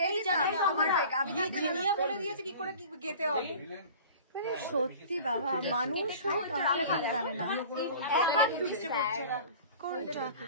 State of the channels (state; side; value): inverted; both; correlation -0.42